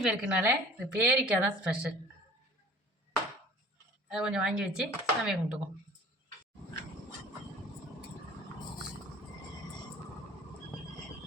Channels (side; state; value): both; normal; correlation 0.47